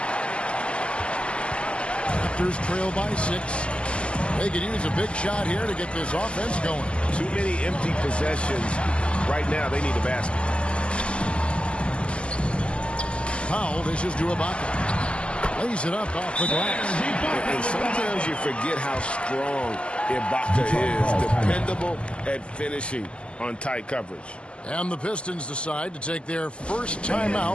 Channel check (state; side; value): late; right; 0.058 ms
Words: Raptors trail by 6. They could use a big shot here to get this offense going. Too many empty possessions. Right now, they need a basket. Powell dishes to Ibaka. Lays it up off the glass. And sometimes you forget how strong Ibaka is. Dependable at finishing on tight coverage. And the Pistons decide to take their first